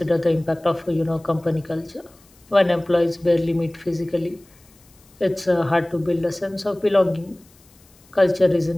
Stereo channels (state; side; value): noise; left; hiss, 29 dB below the sound